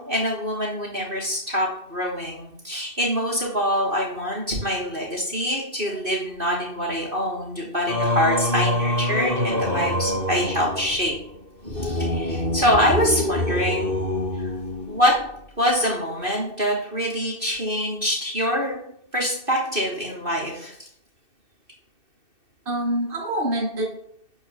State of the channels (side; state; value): left; late; 2.6 ms